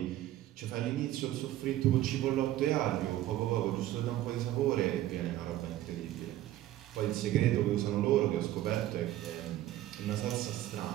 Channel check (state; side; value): quieter; left; 14.1 dB